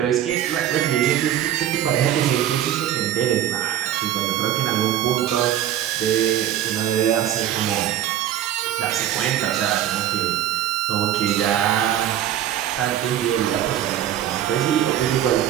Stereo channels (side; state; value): left; quieter; 11.2 dB